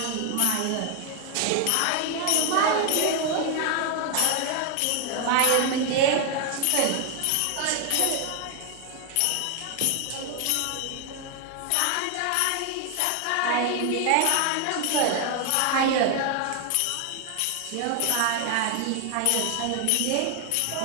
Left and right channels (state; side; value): different; both; correlation 0.00